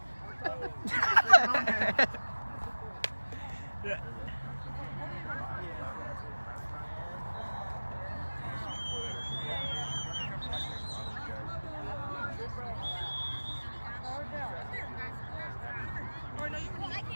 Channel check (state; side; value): inverted; both; correlation -1.00